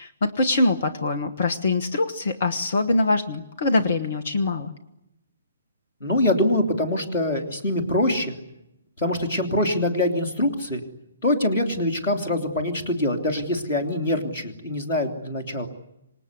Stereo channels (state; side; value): inverted; both; correlation -0.53